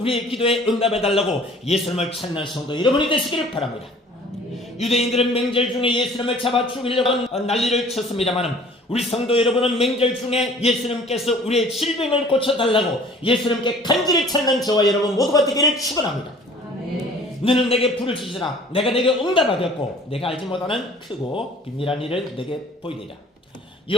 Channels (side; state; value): both; normal; correlation 0.51